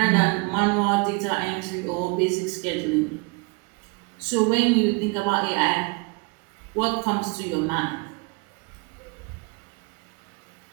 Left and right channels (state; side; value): quieter; left; 30.8 dB